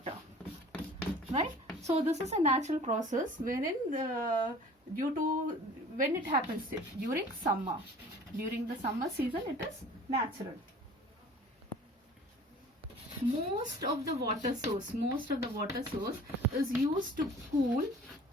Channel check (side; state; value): both; normal; correlation 0.46